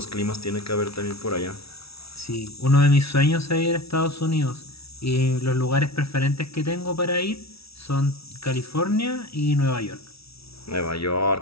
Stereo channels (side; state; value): right; late; 0.76 ms